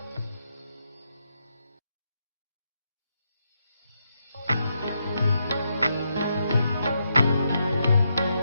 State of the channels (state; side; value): inverted; both; correlation -0.81